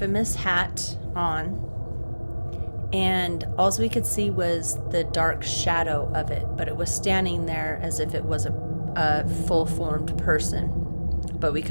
hat on, and all we could see was the dark shadow of it, but it was standing there as if it was a full-formed person, but we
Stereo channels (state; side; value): inverted; both; correlation -1.00